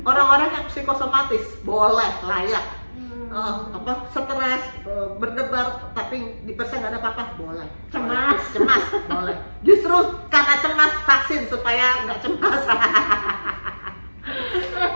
Orang-orang yang psikosomatis boleh, layak. Stres, berdebar tapi di persen nggak ada apa-apa, boleh. Cemas boleh. Justru karena cemas vaksin supaya nggak cemas.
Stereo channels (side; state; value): both; inverted; correlation -1.00